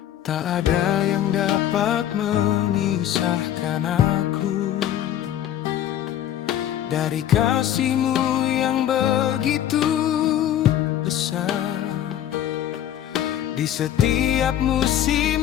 Tak ada yang dapat memisahkan aku dari kasih-Mu yang begitu besar. Di setiap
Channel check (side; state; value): right; quieter; 11.3 dB